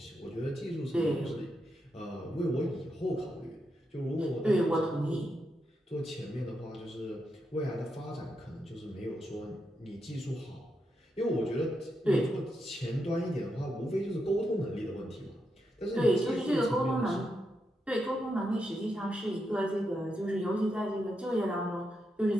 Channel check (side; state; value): both; normal; correlation 0.84